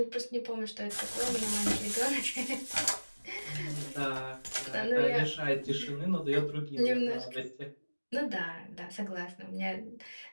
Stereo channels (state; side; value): inverted; both; correlation -1.00